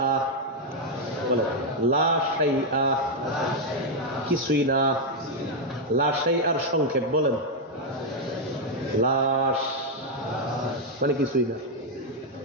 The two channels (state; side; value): normal; both; correlation 0.00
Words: বলেন লা শাইআ, কিছুই না। লা শাইআর সংক্ষেপ বলেন লাশ, মানে কিছুই না।